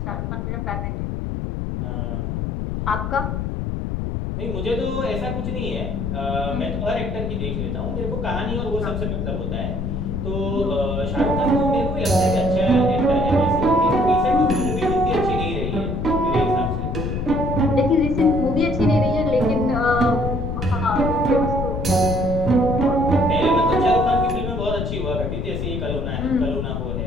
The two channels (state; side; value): noise; left; rumble, 3 dB below the sound